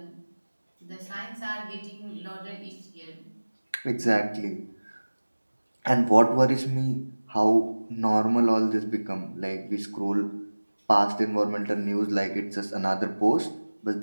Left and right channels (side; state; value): both; inverted; correlation -1.00